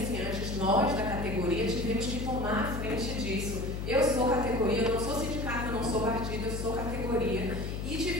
antes, nós da categoria tivemos que tomar a frente disso. Eu sou categoria, eu não sou sindicato, eu não sou partido, eu sou categoria. E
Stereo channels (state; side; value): noise; left; hum, 4 dB below the sound